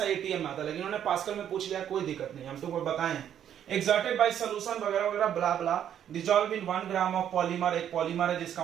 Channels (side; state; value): left; quieter; 9.8 dB